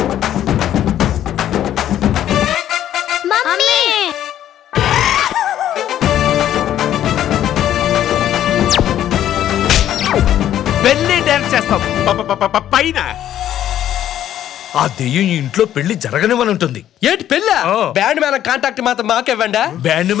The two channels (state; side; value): quieter; right; 11.5 dB